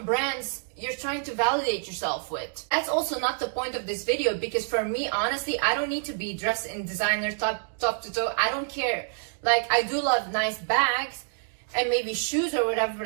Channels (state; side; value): silent; left; 60 dB below the other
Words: brands you're trying to validate yourself with. That's also not the point of this video, because for me, honestly, I don't need to be dressed in designer top to toe. I don't care. Like, I do love nice bags and maybe shoes or whatever,